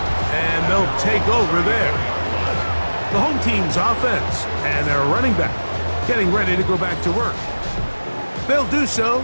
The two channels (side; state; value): both; inverted; correlation -1.00